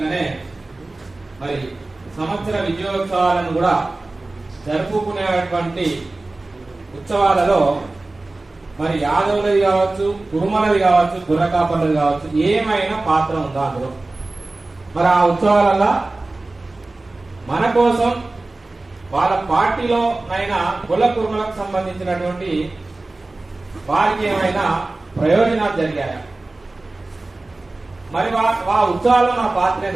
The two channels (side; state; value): left; quieter; 3.1 dB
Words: మరి సంవత్సర విజయోత్సవాలను కూడా జరుపుకునేటువంటి ఉత్సవాలలో మరి యాదవులది కావచ్చు, కురుమలది కావచ్చు, గుర్రకాపర్లది కావచ్చు, ఏమైనా పాత్ర ఉందా అందులో? మరి ఆ ఉత్సవాలలో మన కోసం వాళ్ళ పార్టీలో అయినా కుల కురుమలకు సంబంధించినటువంటి వారికి ఏమైనా ప్రయోజనాలు జరిగాయా? మరి ఆ ఉత్సవాల్లో మన పాత్ర